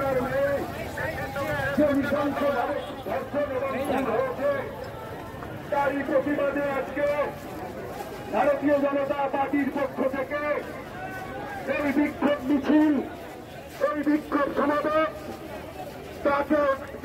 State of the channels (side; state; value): both; identical; correlation 1.00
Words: মেয়ে যে নৃশংসভাবে ধর্ষণ এবং খুন হয়েছে, তারই প্রতিবাদে আজকে ভারতীয় জনতা পার্টির পক্ষ থেকে এই বিক্ষোভ মিছিল, এই বিক্ষোভ সমাবেশ তাকে